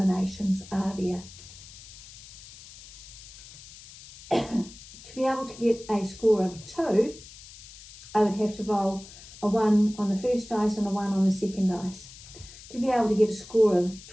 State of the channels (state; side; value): noise; left; hiss, 18 dB below the sound